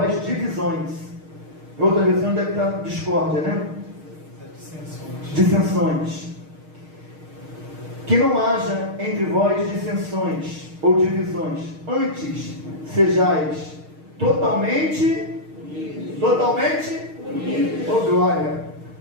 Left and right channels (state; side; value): late; left; 6.5 ms